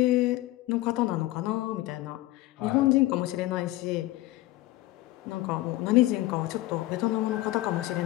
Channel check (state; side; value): quieter; right; 17.6 dB